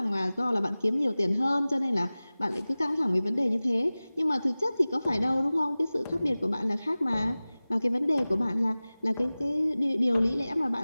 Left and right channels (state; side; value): inverted; both; correlation -0.98